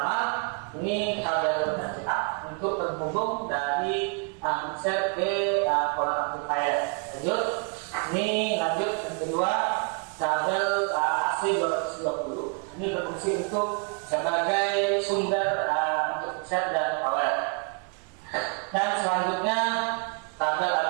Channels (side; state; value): left; quieter; 36.0 dB